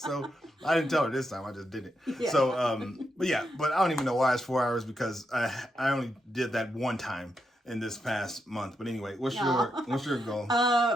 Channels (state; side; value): normal; both; correlation 0.83